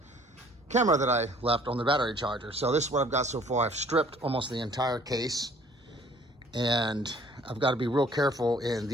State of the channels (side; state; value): both; normal; correlation 0.55